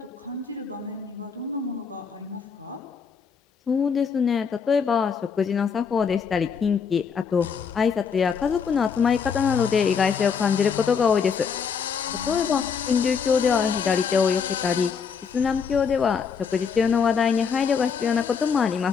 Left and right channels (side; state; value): right; quieter; 6.2 dB